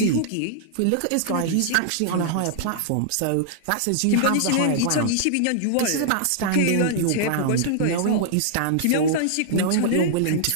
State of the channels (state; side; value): different; both; correlation -0.01